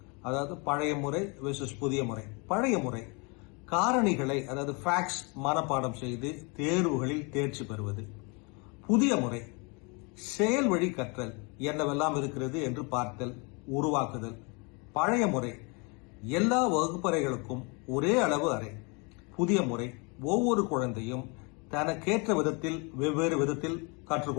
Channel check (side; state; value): right; quieter; 31.4 dB